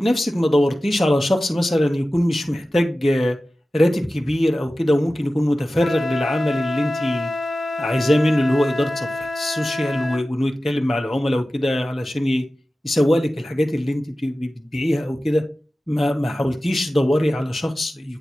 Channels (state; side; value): normal; both; correlation 0.95